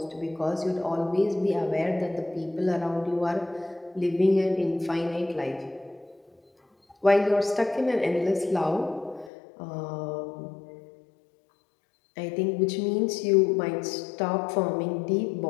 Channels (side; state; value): right; drops out; at 9.3 s